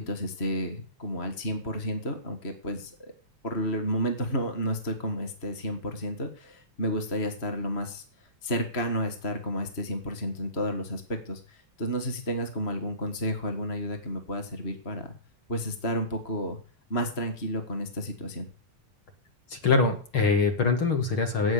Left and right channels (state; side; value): late; right; 3.0 ms